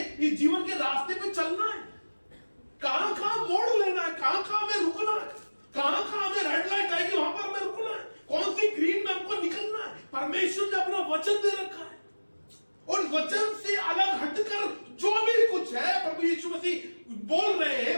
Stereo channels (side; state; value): both; inverted; correlation -1.00